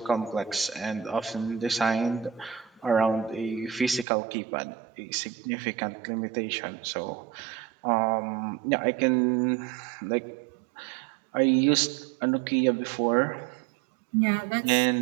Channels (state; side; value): drops out; left; at 4.0 s